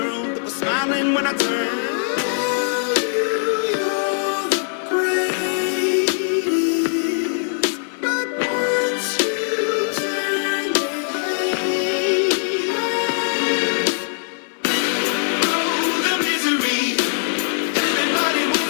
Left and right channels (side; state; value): right; silent; 61 dB below the other